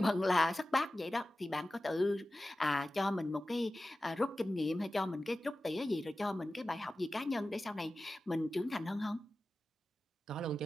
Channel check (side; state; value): both; normal; correlation 0.95